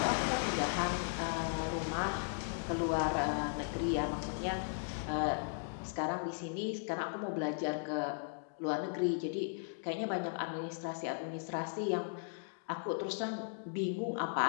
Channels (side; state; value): right; silent; digital silence